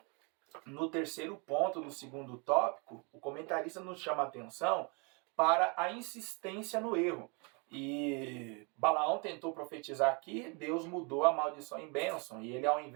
no terceiro ponto, no segundo tópico, o comentarista nos chama a atenção para a insistência no erro. E Balaão tentou profetizar aqui, Deus mudou a maldição em bênção, e ele, ao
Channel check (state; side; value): quieter; left; 32.7 dB